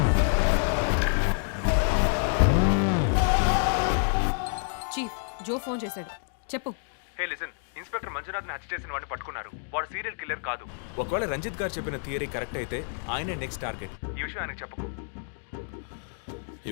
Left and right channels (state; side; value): silent; right; 58 dB below the other